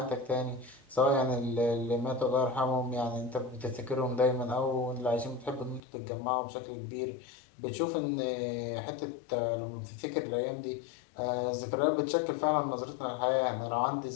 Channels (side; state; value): right; drops out; at 5.8 s